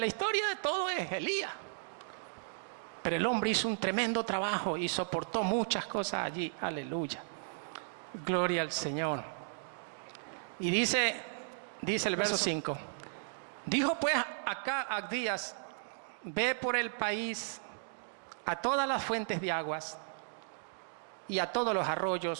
historia de todo es Elías. Pero el hombre hizo un tremendo trabajo y soportó muchas cosas allí. Aleluya. Gloria al Señor. Y dice el verso 5. Dijo pues acá Abdías, ve por el país a todas las fuentes de aguas y a todos los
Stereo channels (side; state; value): left; silent; digital silence